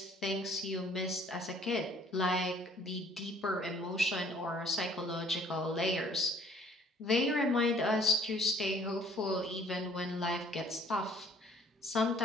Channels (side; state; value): both; normal; correlation 0.57